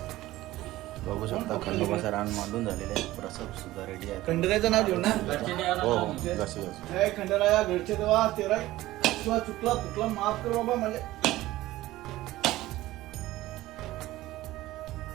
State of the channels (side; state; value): left; quieter; 16.7 dB